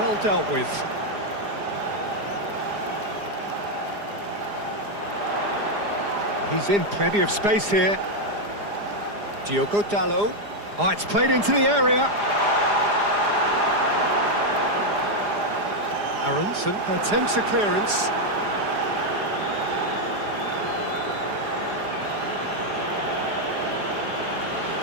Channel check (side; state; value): left; late; 4.9 ms